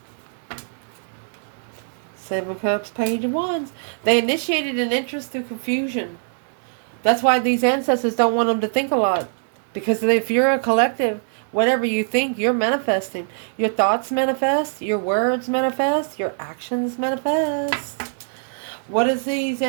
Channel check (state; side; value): silent; left; digital silence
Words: 7 Cups, Page of Wands. They initiated an interest through confusion. That's why these ancestors don't want them to think a lot. Because if you're a collective, whatever you think, you're manifesting. Your thoughts manifest. Your words manifest. Your actions manifest. What does these